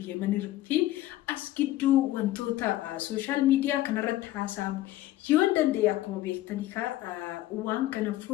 Yemenii fi as gidduu wantoota sooshaal miidiyaa kanarratti haasa'amu yoo danda'e akkuma beektanii waan kana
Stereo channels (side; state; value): right; quieter; 15.3 dB